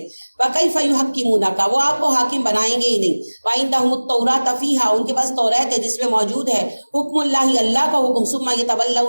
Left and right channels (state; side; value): inverted; both; correlation -1.00